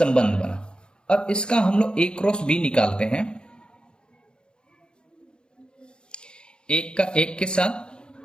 बना। अब इसका हम लोग a क्रॉस b निकालते हैं, एक का 1 के साथ,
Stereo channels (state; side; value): late; right; 0.050 ms